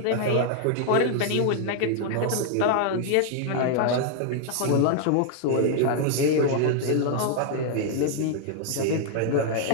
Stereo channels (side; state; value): both; different; correlation 0.00